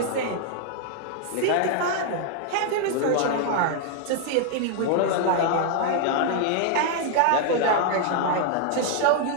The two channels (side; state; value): both; different; correlation 0.00